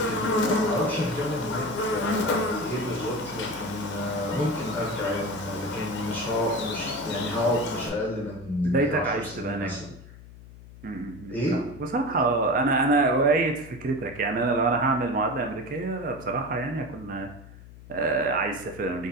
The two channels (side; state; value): left; noise; hum, 18 dB below the sound